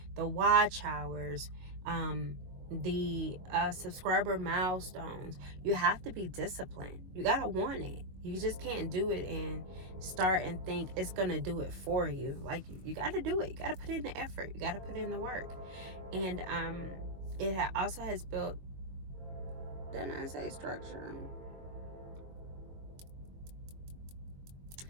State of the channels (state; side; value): late; left; 22 ms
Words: the watch hours, the subscriber milestones, you have to be disciplined. You gotta want it. You just can't do it and start and think it's gonna do it for you. Like, you gotta do it. You gotta put in the effort. You gotta put in the work. And it also has built, didn't I say structure?